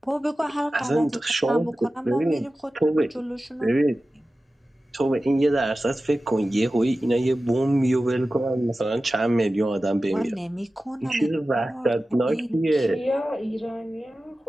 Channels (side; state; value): both; normal; correlation 0.95